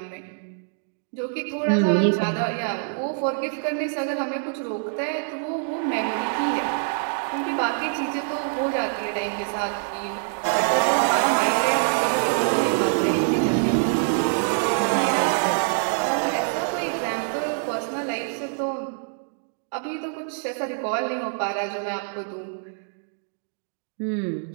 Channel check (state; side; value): silent; left; digital silence